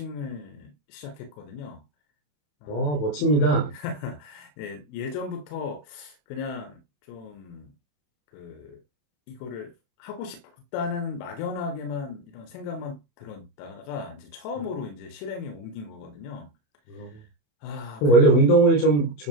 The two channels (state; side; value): late; right; 27 ms